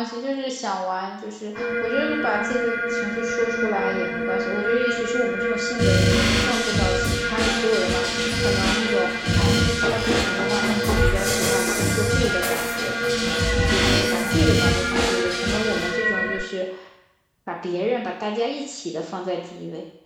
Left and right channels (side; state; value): both; identical; correlation 1.00